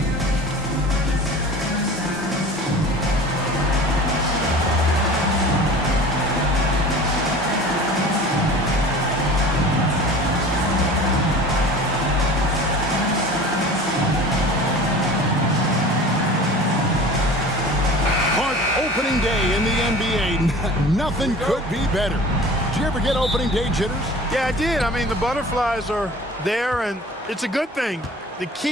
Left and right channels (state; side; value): normal; both; correlation 0.40